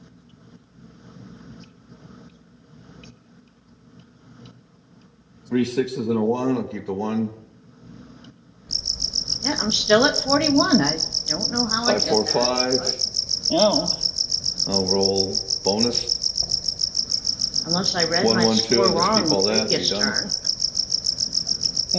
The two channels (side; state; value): both; identical; correlation 1.00